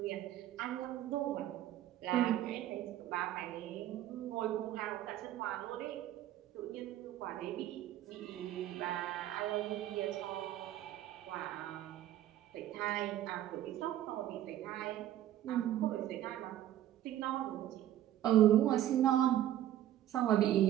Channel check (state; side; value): quieter; left; 12.6 dB